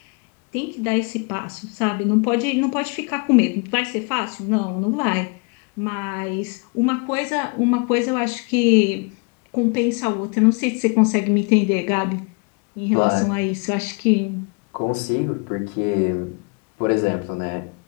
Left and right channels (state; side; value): quieter; right; 33.0 dB